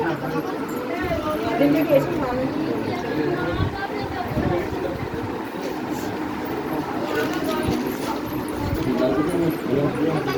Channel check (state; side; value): identical; both; correlation 1.00